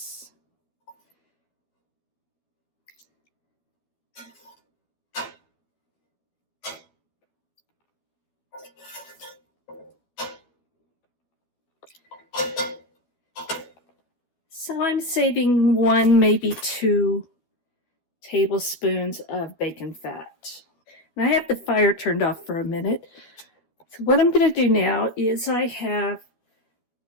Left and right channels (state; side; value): late; right; 12 ms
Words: So I'm saving 1, maybe 2 tablespoons of bacon fat. And I have the fire turned off for a minute. So what I'm going to do now is I